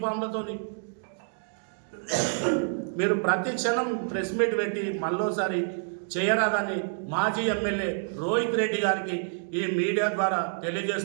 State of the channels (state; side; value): silent; left; digital silence